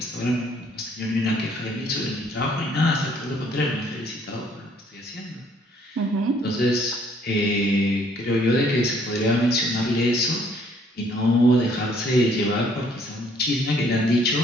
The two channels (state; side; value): normal; both; correlation 0.63